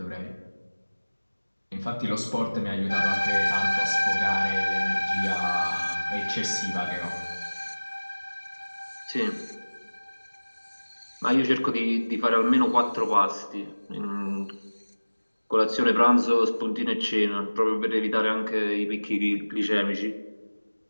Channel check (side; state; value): both; inverted; correlation -1.00